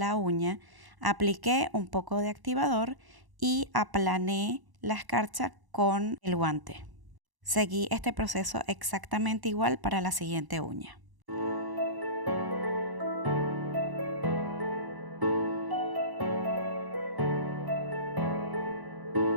uña, apliqué un poco de activador y aplané la escarcha con el guante. Seguí este proceso exactamente igual para la siguiente uña.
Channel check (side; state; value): left; late; 1.0 ms